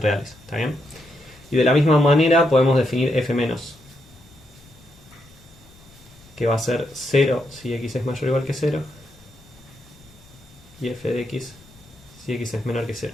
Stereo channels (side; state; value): left; noise; rumble, 25 dB below the sound